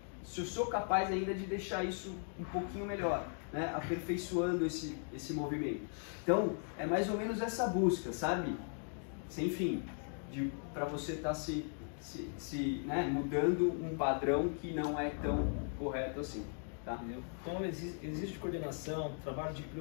se eu sou capaz ainda de deixar isso um pouquinho melhor, né, aperfeiçoando esse movimento. Então, é mais ou menos essa busca, sabe? Sem fim, para você estar né, mudando um padrão que não é tão correto assim. Tá? Então existe coordenação, trabalho de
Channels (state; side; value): silent; right; 52 dB below the other